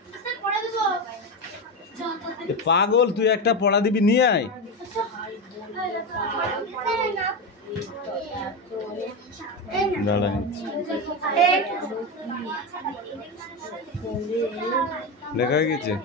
পাগল তুই একটা পড়া দিবি নিয়ে আয় দাঁড়া লেখা হয়ে গেছে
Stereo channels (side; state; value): both; normal; correlation 0.15